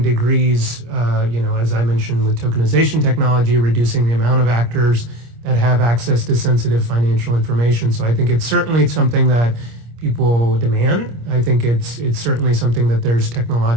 degrees, as I mentioned, with tokenization technology, reducing the amount of actors that have access to sensitive financial information. So I think it's certainly something that people demand. I think it's certainly something that there's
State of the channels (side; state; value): left; late; 26 ms